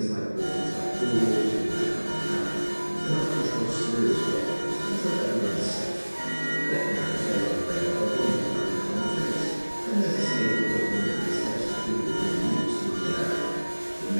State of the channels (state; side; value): inverted; both; correlation -1.00